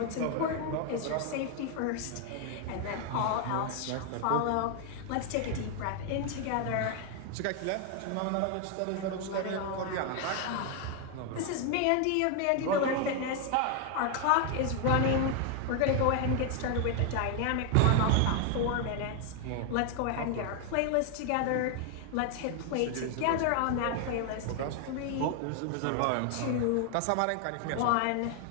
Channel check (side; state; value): both; different; correlation 0.00